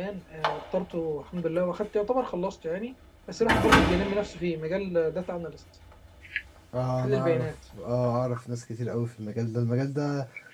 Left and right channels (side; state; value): both; identical; correlation 1.00